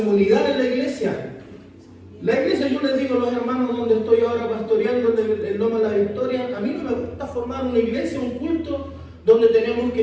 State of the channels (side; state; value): both; identical; correlation 1.00